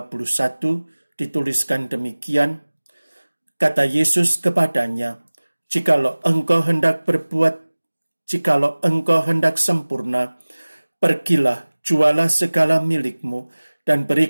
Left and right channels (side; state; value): both; inverted; correlation -1.00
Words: dituliskan demikian, kata Yesus kepadanya, jikalau engkau hendak sempurna, pergilah, jualah segala milikmu, dan